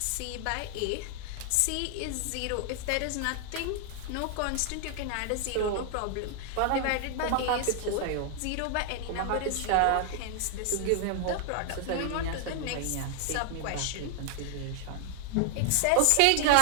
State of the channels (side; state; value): both; different; correlation 0.00